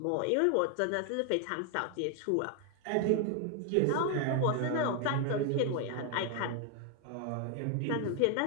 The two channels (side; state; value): both; different; correlation 0.01